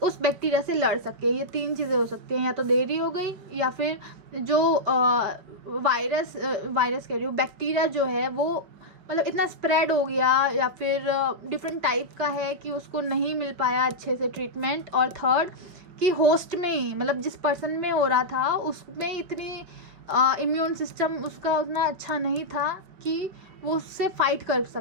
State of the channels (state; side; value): late; left; 5.3 ms